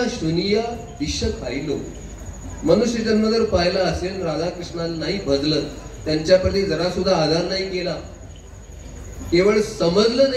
शुनिया विष खाईलो. मनुष्य जन्म जर पाहिला असेल, राधा कृष्णाला नाही भजलं, त्यांच्याप्रती जरा सुद्धा आधार नाही केला, केवळ समजलं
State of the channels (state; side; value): identical; both; correlation 1.00